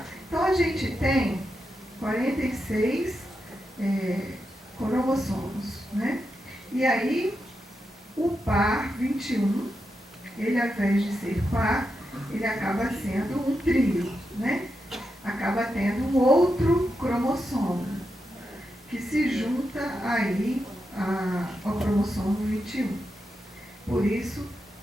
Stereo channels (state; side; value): normal; both; correlation 0.87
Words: Então, a gente tem 46 cromossomos, né? E aí, o par 21, ele, ao invés de ser par, ele acaba sendo um trio, né? Acaba tendo um outro cromossomo, que se junta aí ao cromossomo 21. Por isso,